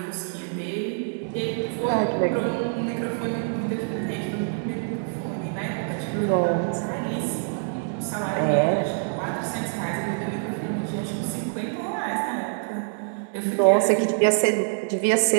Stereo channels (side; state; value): left; silent; digital silence